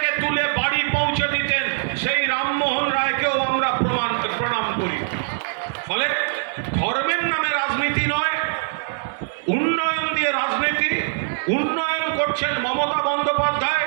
তুলে বাড়ি পৌঁছে দিতেন, সেই রামমোহন রায়কেও আমরা প্রণাম করি। ফলে ধর্মের নামে রাজনীতি নয়, উন্নয়ন দিয়ে রাজনীতি। উন্নয়ন করছেন মমতা বন্দ্যোপাধ্যায়,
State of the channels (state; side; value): silent; left; digital silence